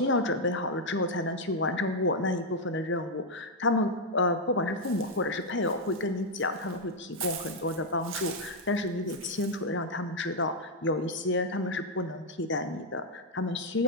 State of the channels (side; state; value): both; normal; correlation -0.01